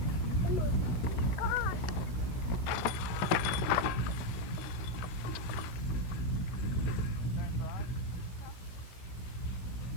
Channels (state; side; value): late; right; 16 ms